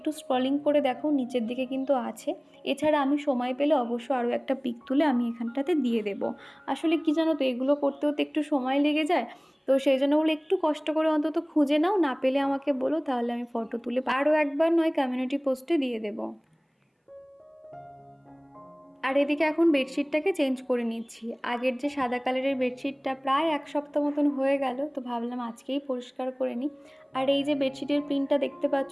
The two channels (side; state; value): both; identical; correlation 1.00